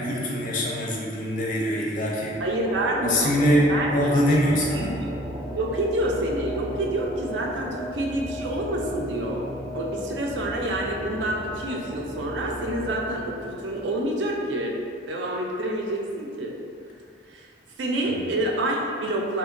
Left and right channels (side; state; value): both; normal; correlation 0.45